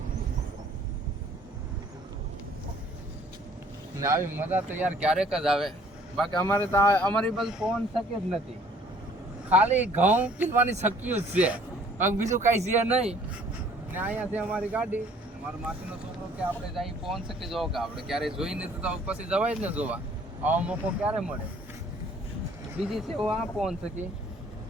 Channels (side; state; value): both; normal; correlation 0.57